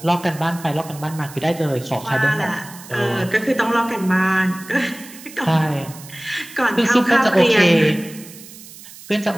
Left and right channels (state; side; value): noise; right; hiss, 18 dB below the sound